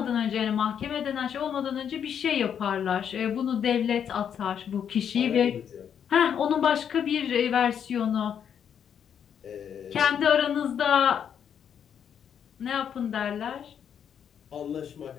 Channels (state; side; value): quieter; right; 8.3 dB